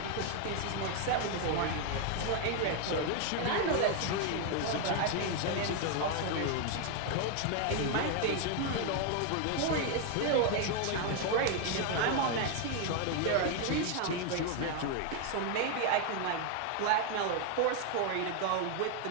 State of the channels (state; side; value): different; both; correlation 0.01